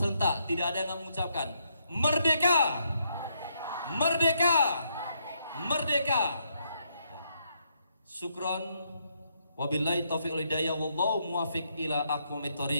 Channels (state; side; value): inverted; both; correlation -0.76